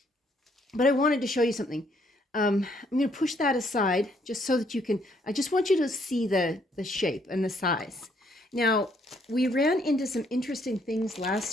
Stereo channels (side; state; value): both; normal; correlation 0.69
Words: But I wanted to show you something. I'm going to push that aside just so that you can, I just want you to see the shape and the size. Now, we ran into some interesting things